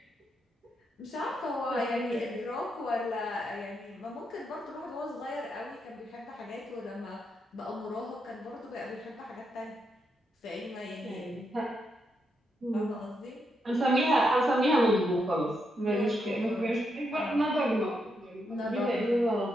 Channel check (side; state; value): both; normal; correlation 0.81